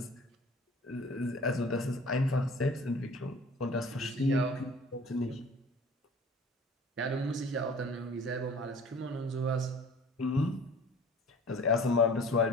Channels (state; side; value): normal; both; correlation 0.47